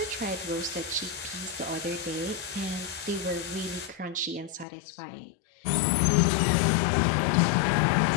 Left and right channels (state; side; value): drops out; right; at 4.7 s